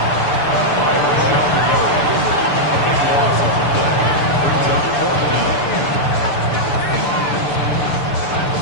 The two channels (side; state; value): right; late; 6.9 ms